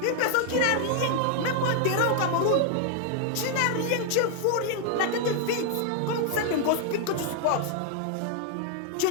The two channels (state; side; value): different; both; correlation 0.00